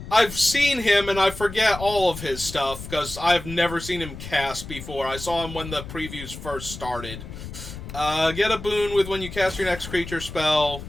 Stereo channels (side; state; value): left; noise; rumble, 11 dB below the sound